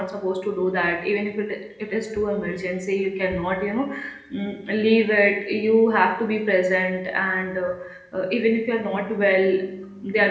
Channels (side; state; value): both; identical; correlation 1.00